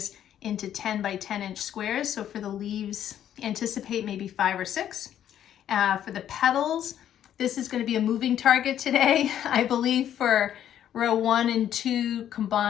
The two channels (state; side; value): quieter; right; 10.5 dB